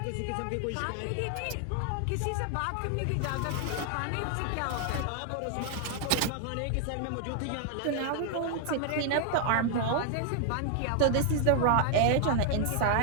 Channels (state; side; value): different; both; correlation 0.00